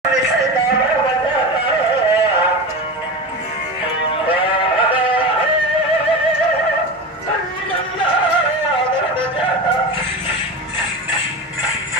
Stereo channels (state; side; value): normal; both; correlation 0.25